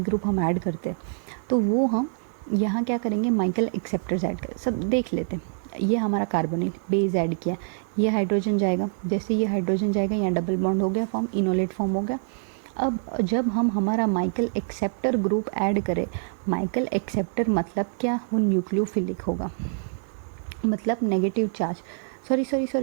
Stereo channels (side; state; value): left; silent; digital silence